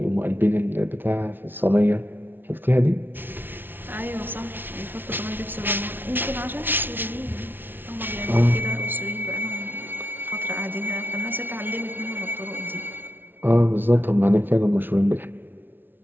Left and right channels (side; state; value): left; late; 0.098 ms